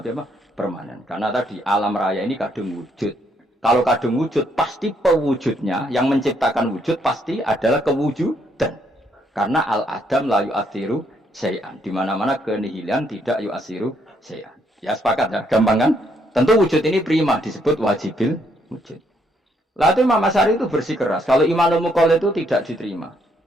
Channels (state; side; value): normal; both; correlation 0.72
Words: apa? Permanen. Karena tadi alam raya ini kadung wujud. Kalau kadung wujud pasti pewujudnya yang menciptakan wujud pasti adalah kewujudan. Karena al-adam la yu'athiru syai'an. Di mana-mana kenihilan tidak yu'athiru syai'an. Ya sepakat ya, gampang kan? Tentu wujud ini prima disebut wajibil wujud. Lalu Imam Asy'ari itu bersikeras. Kalau imanul muqallid itu tidak diterima.